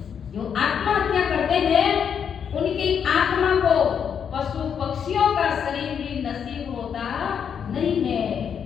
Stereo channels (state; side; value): quieter; right; 7.6 dB